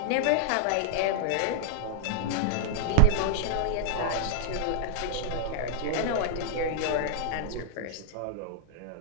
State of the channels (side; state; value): both; different; correlation -0.01